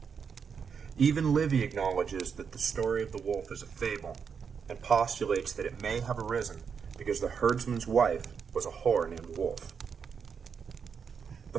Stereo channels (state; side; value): quieter; left; 6.5 dB